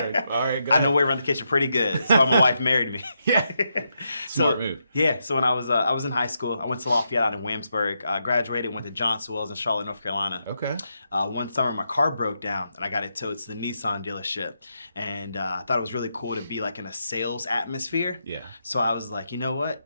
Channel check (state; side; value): inverted; both; correlation -0.82